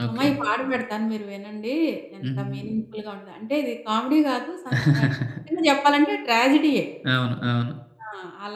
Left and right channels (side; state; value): both; identical; correlation 1.00